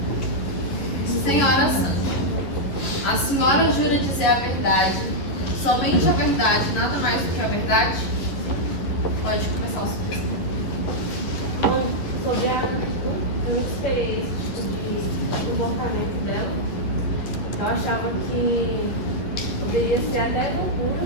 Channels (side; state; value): right; late; 11 ms